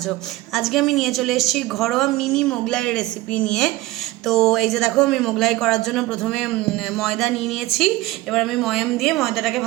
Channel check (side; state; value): left; quieter; 18.3 dB